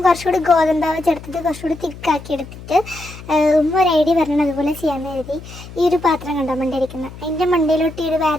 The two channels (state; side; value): noise; left; hum, 15 dB below the sound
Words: കുറച്ചുകൂടി ഗോതമ്പാവ് ചേർത്തിട്ട് കുറച്ചുകൂടി തിക്കാക്കി എടുത്തിട്ട് ഒരു ഐഡിയ പറഞ്ഞാൽ അതുപോലെ ചെയ്യാമെന്ന് കരുതി ഈ ഒരു പാത്രം കണ്ടോ മണ്ടയിരിക്കുന്നത്, അതിൻ്റെ മണ്ടയിലോട്ട് ഈ ഒരു